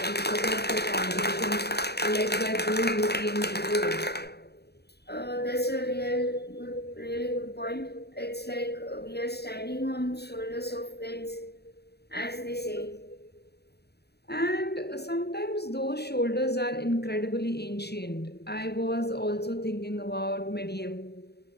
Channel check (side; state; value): right; late; 0.48 ms